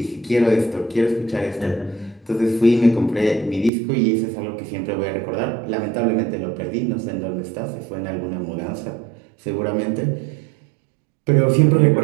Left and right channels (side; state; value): left; drops out; at 3.7 s